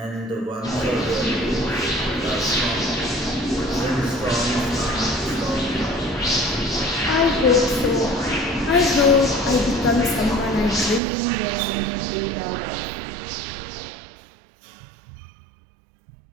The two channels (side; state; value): left; drops out; at 11.0 s